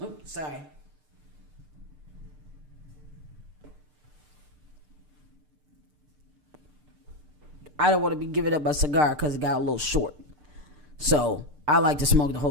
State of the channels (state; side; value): late; left; 6.7 ms